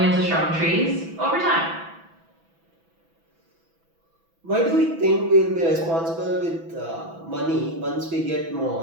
into strong trees over time. Why do we think we'll be responsible with money once we get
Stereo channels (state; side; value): late; left; 6.0 ms